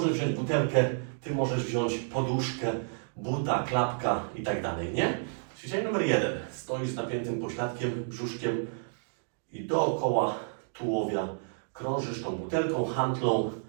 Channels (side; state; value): left; silent; digital silence